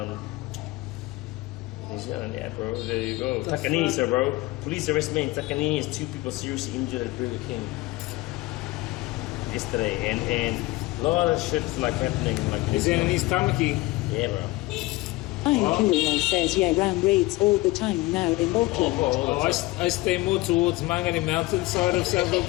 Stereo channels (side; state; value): right; quieter; 20.6 dB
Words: New Zealand, yeah, bro. There you go. Takanini, sir, bro. Police arrest me in Takanini as 2 people seriously injured at Burger King yesterday, and a lot of shit's like happening. Like is that in East Tamaki? Yeah, bro. Kirill says, yeah, ram raids all the time now in Auckland. Oh, I stay more towards Mangere Mountain side of South